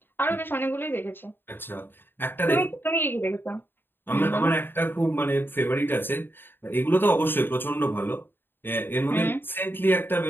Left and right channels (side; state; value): right; late; 0.098 ms